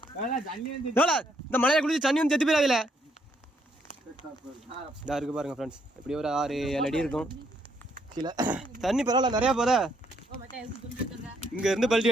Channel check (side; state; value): both; normal; correlation 0.72